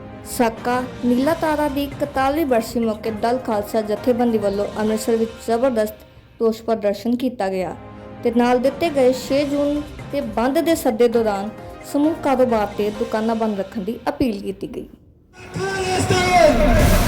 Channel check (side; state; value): both; identical; correlation 1.00